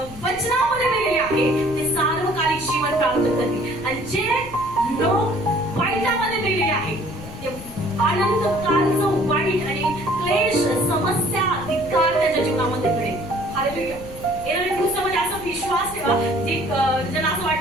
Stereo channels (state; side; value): noise; left; rumble, 15 dB below the sound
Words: वचनामध्ये मेलेले आहे ते सार्वकालिक जीवन प्राप्त करतील. आणि जे लोक वाईटामध्ये मेलेले आहे ते अनंत कालचं वाईट आणि क्लेश, समस्या, धिक्कार त्याच्या जीवनामध्ये घडेल. हालेलुया. येणाऱ्या दिवसामध्ये असा विश्वास ठेवा जे ज्यांना असं